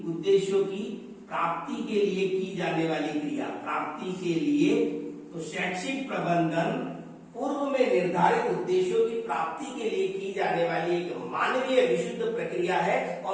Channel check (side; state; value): both; identical; correlation 1.00